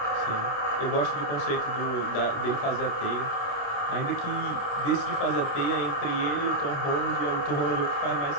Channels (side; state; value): right; late; 29 ms